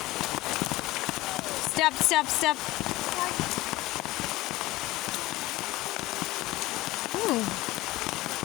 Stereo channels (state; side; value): quieter; right; 18.6 dB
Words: Step step step.